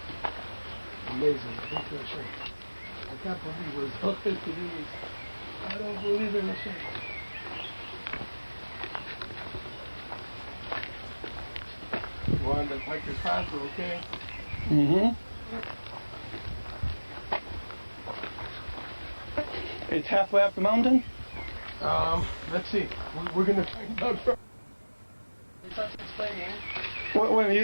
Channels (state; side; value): inverted; both; correlation -1.00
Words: Amazing. Thank you, Hashem. I can't believe we're so good to do this. I don't believe in Hashem. We're on the hiker's path, we're okay. Mm-hmm. It's halfway up the mountain? Let's see. We're going to find out. He starts explaining. Well,